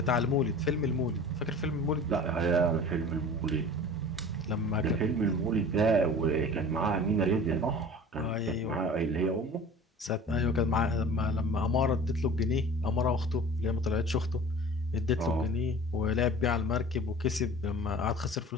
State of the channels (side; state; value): both; normal; correlation 0.41